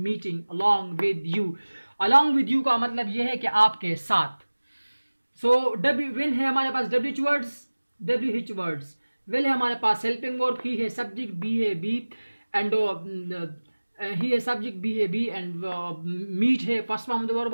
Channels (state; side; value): inverted; both; correlation -1.00